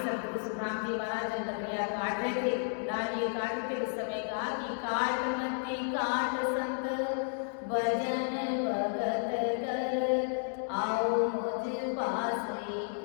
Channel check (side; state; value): right; silent; digital silence